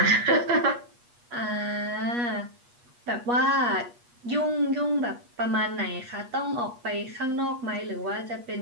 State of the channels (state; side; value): late; left; 8.4 ms